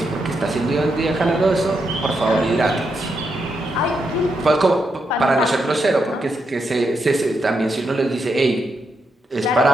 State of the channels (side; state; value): both; normal; correlation 0.82